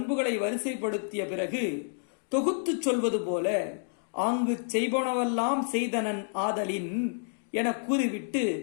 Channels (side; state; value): right; silent; digital silence